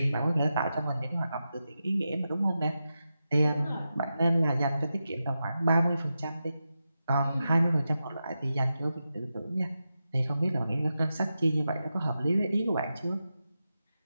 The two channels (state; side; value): inverted; both; correlation -0.90